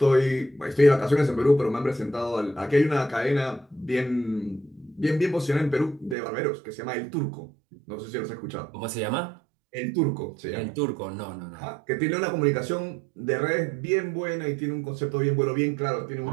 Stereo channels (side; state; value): left; drops out; at 6.2 s